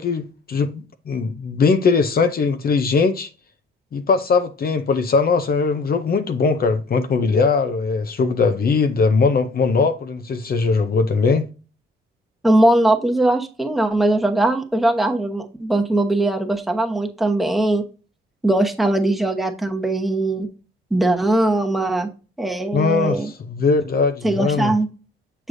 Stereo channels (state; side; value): normal; both; correlation 0.63